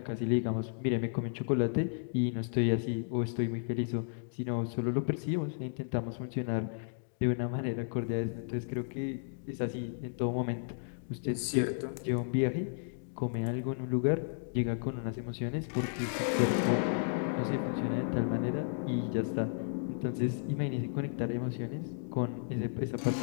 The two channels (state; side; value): silent; right; digital silence